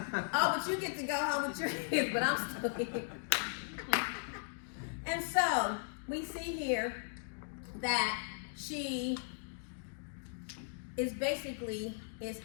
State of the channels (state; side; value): silent; right; digital silence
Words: Oh, but you get to go home with your kids, but I'm still here. And so we see here that she is